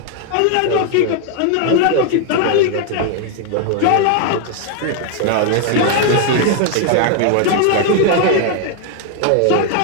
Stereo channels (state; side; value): different; both; correlation 0.00